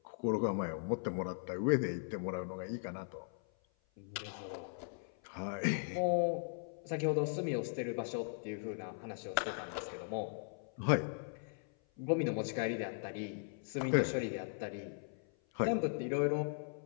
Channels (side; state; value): right; silent; 52 dB below the other